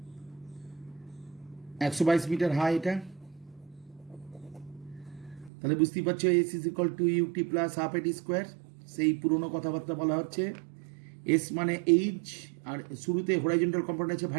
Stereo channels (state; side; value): drops out; left; at 5.5 s